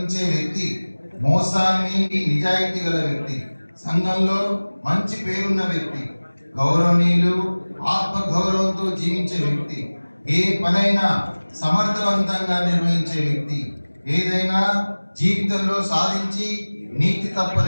వ్యక్తి, మోసాన్ని నిజాయితీ గల వ్యక్తి, సంఘంలో మంచి పేరున్న వ్యక్తి, గౌరవనీయులు, ఆత్మగౌరవంతో జీవించే వ్యక్తి, ఏ పనైనా సమర్థవంతంగా నిర్వహించే వ్యక్తి, ఏదైనా జీవితంలో సాధించి నీతి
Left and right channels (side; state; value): both; inverted; correlation -1.00